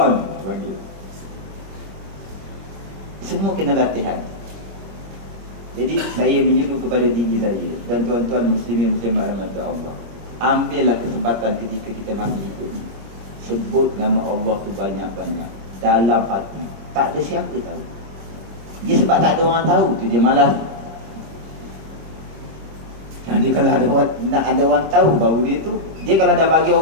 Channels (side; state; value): left; late; 26 ms